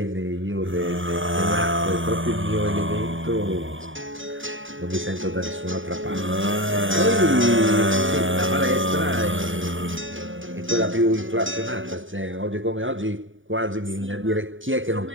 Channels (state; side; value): late; left; 0.57 ms